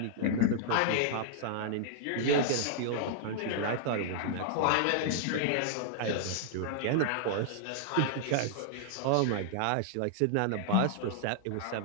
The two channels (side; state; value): both; different; correlation -0.01